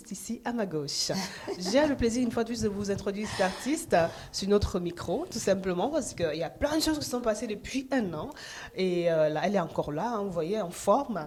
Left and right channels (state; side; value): identical; both; correlation 1.00